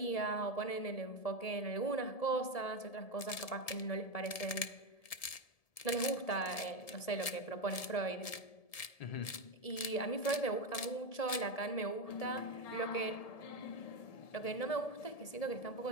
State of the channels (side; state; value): right; late; 1.7 ms